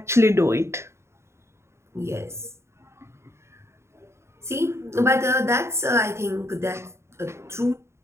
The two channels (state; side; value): late; left; 0.13 ms